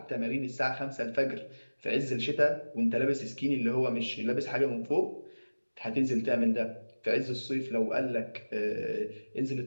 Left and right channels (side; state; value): both; inverted; correlation -1.00